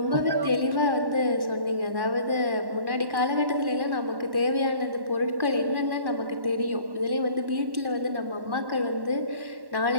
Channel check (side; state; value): left; late; 1.1 ms